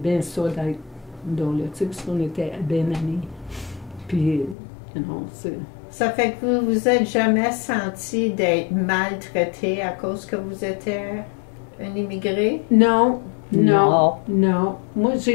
ça d'être dans le type, parce qu'on était bien amis. Puis, non, c'est... Ça fait que vous vous êtes jamais senti d'être maltraité à cause que vous étiez un immigré? Non, non, non. Moi,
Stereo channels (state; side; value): drops out; right; at 4.5 s